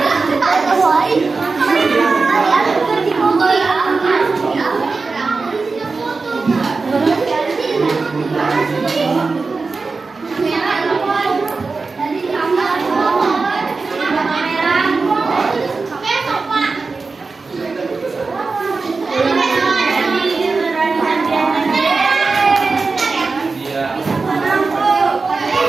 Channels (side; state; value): left; quieter; 4.1 dB